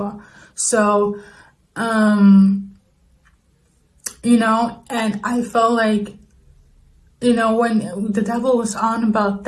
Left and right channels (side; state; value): both; identical; correlation 1.00